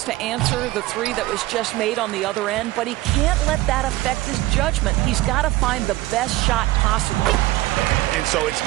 to answer the 3 that was just made on the other end, but he can't let that affect his judgment. He's got to find the best shot possible. And so it's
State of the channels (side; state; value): left; quieter; 17.7 dB